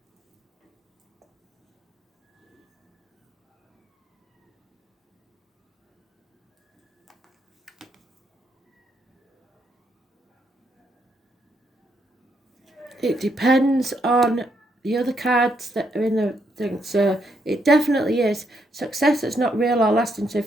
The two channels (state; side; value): normal; both; correlation 0.76